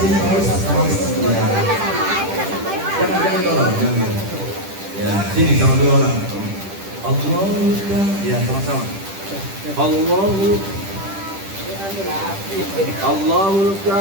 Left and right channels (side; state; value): left; late; 10 ms